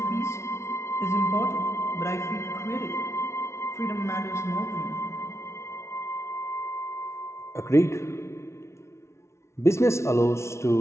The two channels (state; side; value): late; right; 0.13 ms